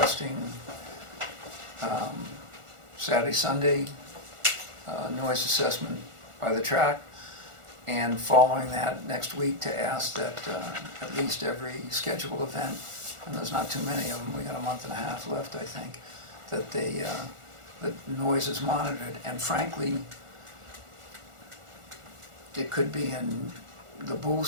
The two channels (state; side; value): late; left; 1.4 ms